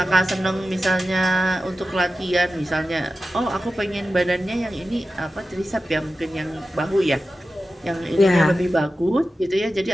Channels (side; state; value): both; normal; correlation 0.93